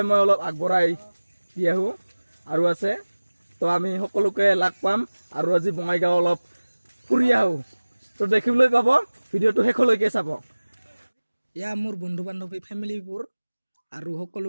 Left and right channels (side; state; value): both; inverted; correlation -1.00